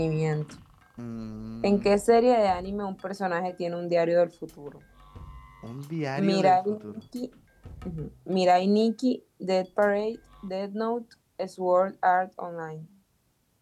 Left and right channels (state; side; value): identical; both; correlation 1.00